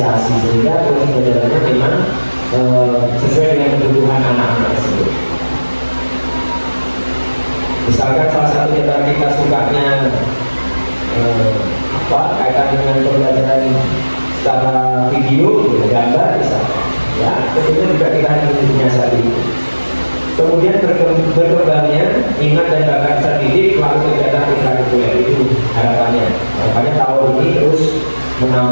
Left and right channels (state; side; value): inverted; both; correlation -1.00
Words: sehingga proses pembelajarannya memang sesuai dengan kebutuhan anak-anak tersebut. Misalkan salah satu di antara kita sukanya kaitan dengan pembelajaran secara video, gambar misalnya, ya tentunya juga kita harus menyiasati. Kemudian berkembangnya minat dan bakat terdidik melalui kegiatan ekstrakurikuler itu harapannya. Harapannya tahun ini terus